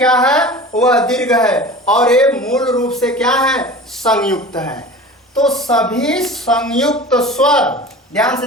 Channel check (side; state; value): both; normal; correlation 0.37